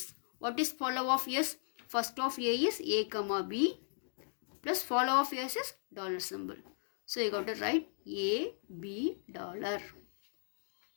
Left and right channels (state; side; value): silent; right; digital silence